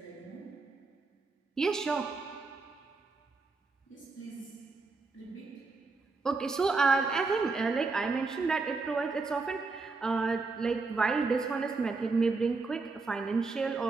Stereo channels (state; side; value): quieter; left; 4.0 dB